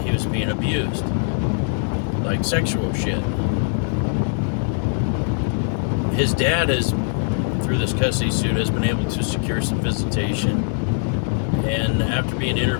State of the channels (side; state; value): right; silent; 64 dB below the other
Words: he was being abused, like sexual shit. His dad through this custody suit, has been able to secure some visitation, and after being